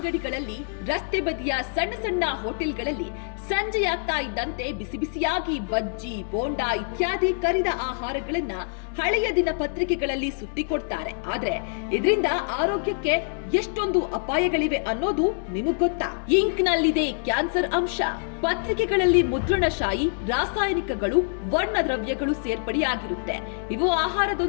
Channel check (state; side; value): silent; right; digital silence